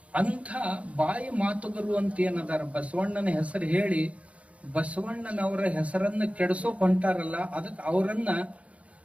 ಅಂಥ ಬಾಯಿ ಮಾತುಗರು ಅಂತ ಏನದಾರ ಬಸವಣ್ಣನ ಹೆಸರು ಹೇಳಿ ಬಸವಣ್ಣನವರ ಹೆಸರನ್ನ ಕೆಡಿಸೋಕ್ ಹೊಂಟಾರಲ್ಲ, ಅದಕ್ಕೆ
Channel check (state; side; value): late; left; 0.064 ms